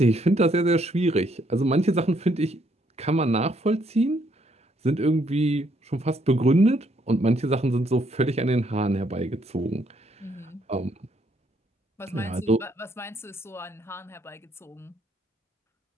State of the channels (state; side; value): normal; both; correlation 0.71